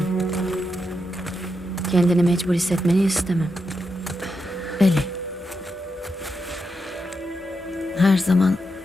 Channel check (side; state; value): both; normal; correlation 0.85